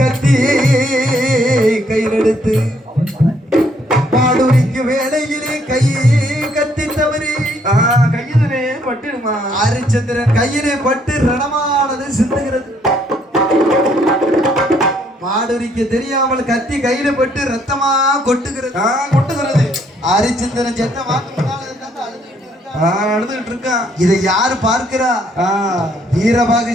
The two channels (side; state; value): both; normal; correlation 0.68